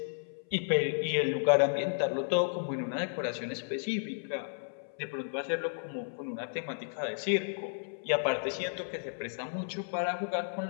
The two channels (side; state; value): right; silent; 56 dB below the other